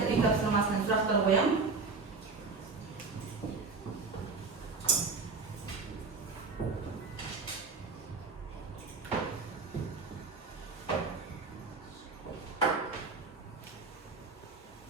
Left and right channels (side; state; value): left; quieter; 4.2 dB